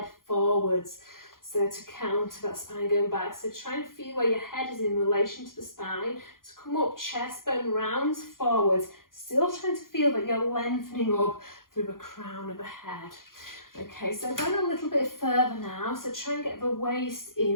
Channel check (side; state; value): right; late; 0.91 ms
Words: forwards. So to counter that spine going back. So try and feel where your head is in relation to the spine. To come up, chest bone rounds forwards. Still trying to feel that you're lengthening up through the crown of the head. Okay, so going a little bit further now. So try and get the waist